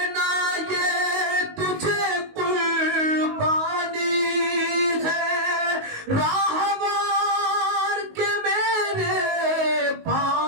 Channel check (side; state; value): left; late; 19 ms